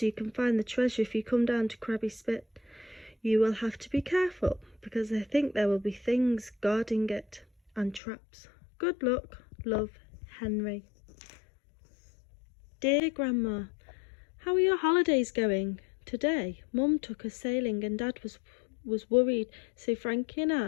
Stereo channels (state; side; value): drops out; right; at 8.0 s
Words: you can find the treasure if you come down to Krabby Spit. You will have to be careful because I think there will be things guarding it and traps. Good luck. Love, Henry. Dear Grandma, how are your holidays going? Today, Mum took us sailing and Dad was worried, so Frankie and